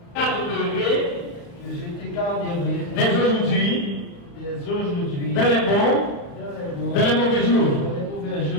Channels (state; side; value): late; right; 35 ms